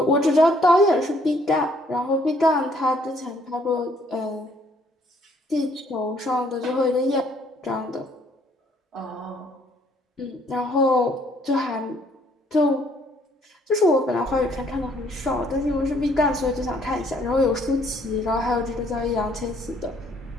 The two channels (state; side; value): normal; both; correlation 0.64